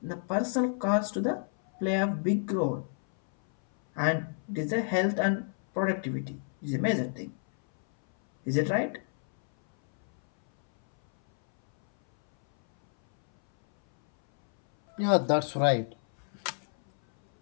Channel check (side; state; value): right; silent; 59 dB below the other